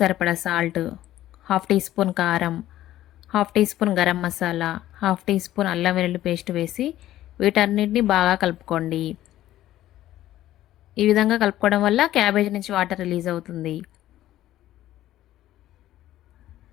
సరిపడా సాల్ట్, హాఫ్ టీ స్పూన్ కారం, half teaspoon garam masala, half teaspoon అల్లం వెల్లుల్లి పేస్ట్ వేసి వీటన్నిటిని బాగా కలుపుకోండి. ఈ విధంగా కలుపుకోవడం వల్ల క్యాబేజ్ నుంచి వాటర్ రిలీజ్ అవుతుంది.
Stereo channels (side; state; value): right; quieter; 13.8 dB